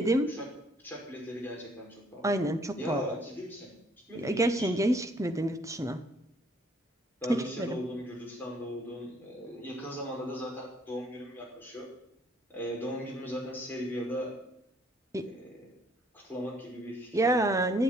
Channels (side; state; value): both; normal; correlation 0.64